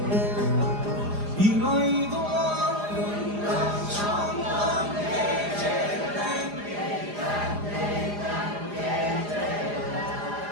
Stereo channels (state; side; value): late; left; 4.9 ms